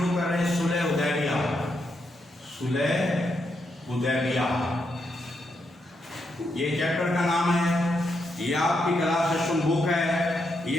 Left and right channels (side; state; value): both; normal; correlation 0.81